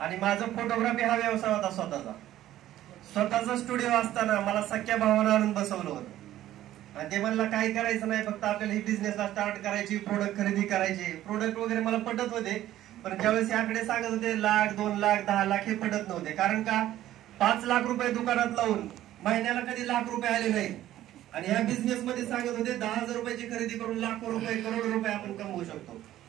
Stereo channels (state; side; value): quieter; left; 13.5 dB